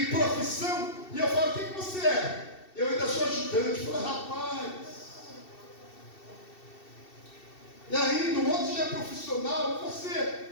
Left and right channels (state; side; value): late; right; 2.7 ms